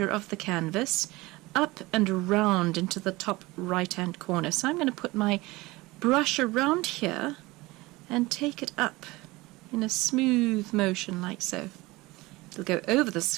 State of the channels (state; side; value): quieter; left; 21.3 dB